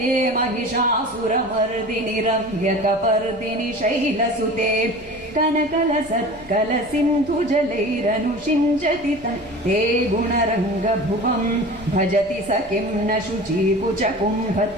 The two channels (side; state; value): left; noise; rumble, 22 dB below the sound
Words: महिषासुरमर्दिनि रम्यकपर्दिनि शैलसुते कनकल सत्कल सिन्धु जलैरनुषिञ्जति ते गुणरङ्गभुवं भजति स किं न शुचीकुच